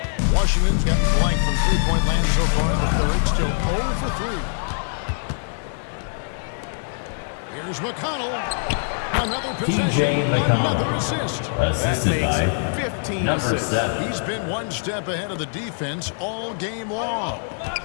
Washington's gotten blank from three-point land so far in the third. Still 0 for 3. Here's McConnell. Another possession. TJ McConnell. Another assist. Assisted That by makes 15 number assists. 7. He's been one step ahead of the defense all game long.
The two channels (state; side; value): silent; right; 63 dB below the other